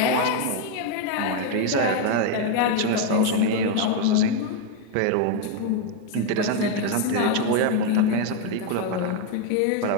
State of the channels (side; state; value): both; different; correlation 0.01